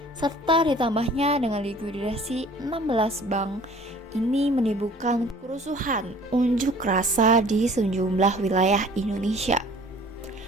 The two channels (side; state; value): both; normal; correlation 0.51